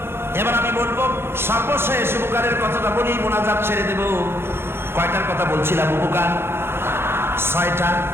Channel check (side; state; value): left; late; 0.11 ms